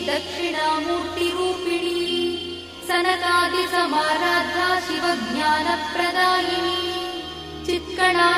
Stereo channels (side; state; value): both; identical; correlation 1.00